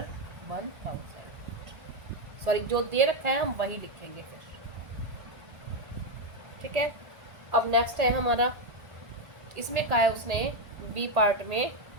1000, सॉरी जो दे रखा है हम वही लिखेंगे फिर। ठीक है, अब नेक्स्ट है हमारा, इसमें कहा है उसने बी पार्ट में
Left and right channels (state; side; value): late; left; 1.8 ms